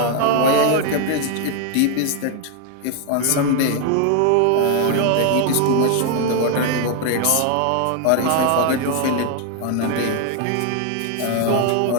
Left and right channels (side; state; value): both; different; correlation 0.00